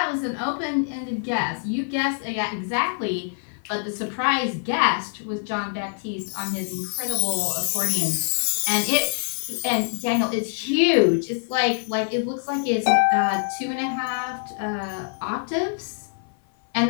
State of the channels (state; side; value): silent; right; 55 dB below the other